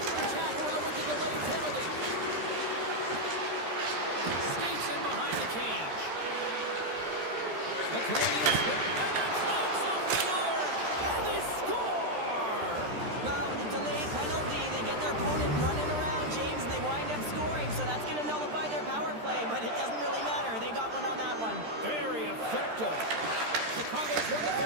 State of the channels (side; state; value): left; late; 13 ms